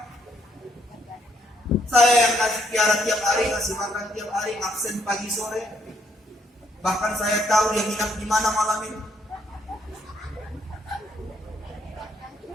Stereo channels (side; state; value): both; normal; correlation 0.71